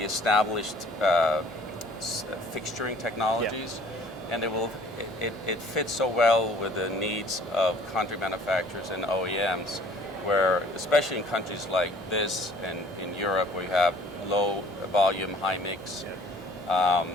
established fixturing technologies, and it fits so well with the needs of country manufacturers and OEMs, where especially in countries like this and in Europe where you have low volume, high mix,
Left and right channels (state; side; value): normal; both; correlation 0.53